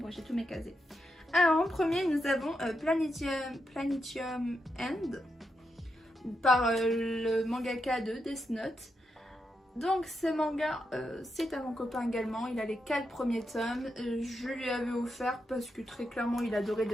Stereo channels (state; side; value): normal; both; correlation 0.85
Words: j'ai tous mes casés. Alors, en premier, nous avons Planetium End par le mangaka de Death Note. Donc ce manga, c'est à mon copain également, il a les 4 premiers tomes, je lui avais offert parce que très clairement il adorait